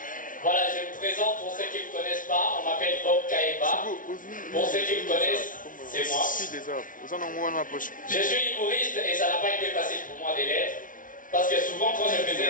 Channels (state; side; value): late; right; 0.38 ms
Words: Voilà, je me présente pour ceux qui ne me connaissent pas. On m'appelle Bob Kaeba. Pour ceux qui me connaissent, c'est moi. Je suis humoriste et ça n'a pas été facile pour moi de l'être. Parce que souvent, quand je